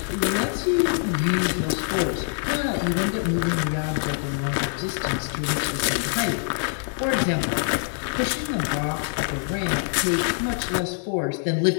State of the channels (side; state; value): right; silent; digital silence